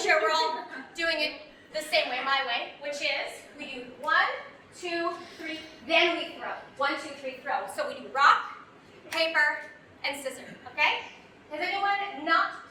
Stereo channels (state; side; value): identical; both; correlation 1.00